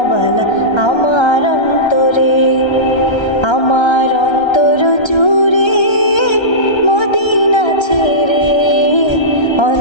আমার অন্তরে। আমার অন্তর জুড়ে মদিনা ছেড়ে,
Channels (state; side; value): late; right; 1.3 ms